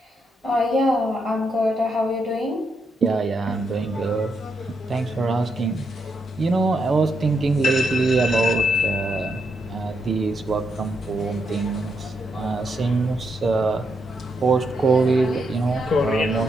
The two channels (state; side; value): normal; both; correlation 0.80